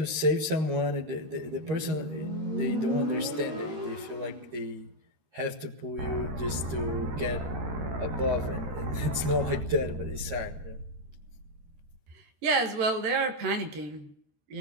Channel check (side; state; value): left; late; 13 ms